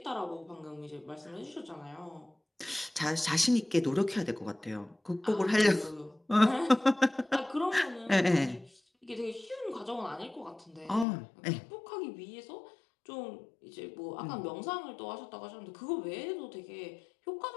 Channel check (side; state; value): right; drops out; at 11.1 s